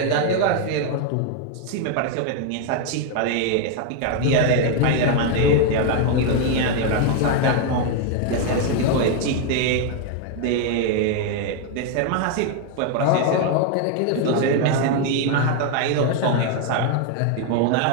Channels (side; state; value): both; different; correlation 0.01